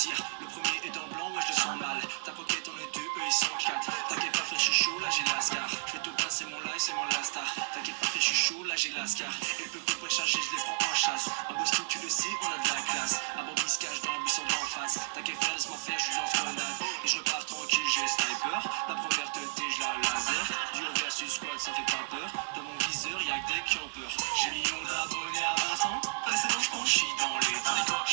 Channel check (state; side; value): silent; left; digital silence